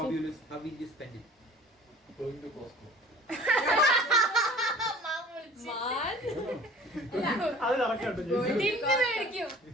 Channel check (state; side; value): normal; both; correlation 0.47